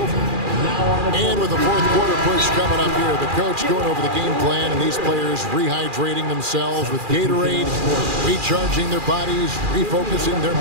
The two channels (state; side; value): late; left; 2.4 ms